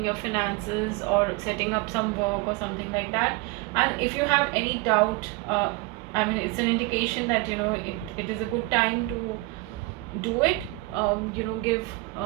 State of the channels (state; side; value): quieter; left; 22.5 dB